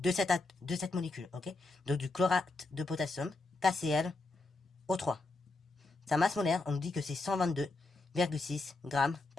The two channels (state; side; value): quieter; right; 3.3 dB